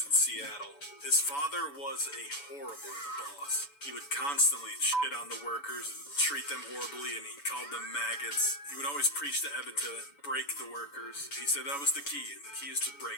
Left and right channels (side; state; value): right; late; 7.0 ms